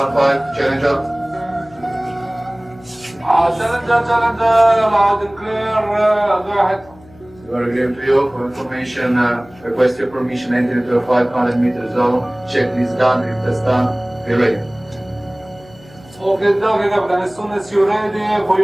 challenger. Challenger, loud and clear, go ahead. You are agreeing to you for information, request your permission entry into a 500-meter zone. Checklist done, rig test done, be ready. Okay, Captain, as soon as you're ready, for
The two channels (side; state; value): left; noise; hum, 24 dB below the sound